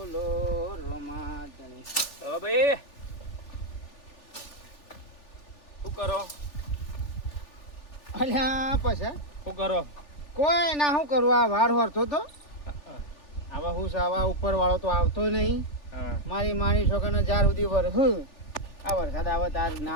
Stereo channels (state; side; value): late; right; 3.4 ms